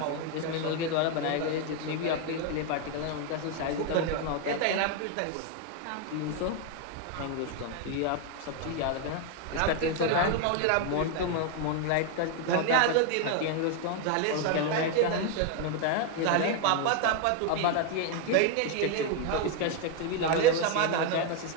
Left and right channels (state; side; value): different; both; correlation 0.01